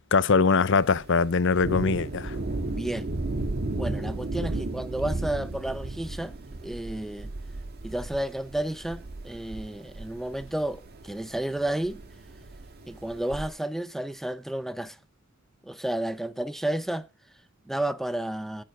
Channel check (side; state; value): both; normal; correlation 0.39